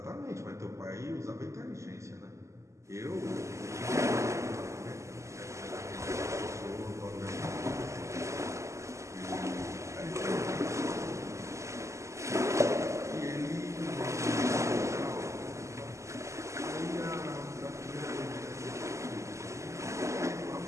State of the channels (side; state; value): left; late; 0.14 ms